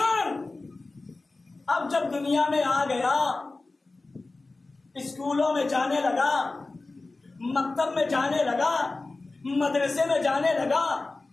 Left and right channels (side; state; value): right; quieter; 3.4 dB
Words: اب جب دنیا میں آ گیا، اسکولوں میں جانے لگا، مکتب میں جانے لگا، مدرسے میں جانے لگا،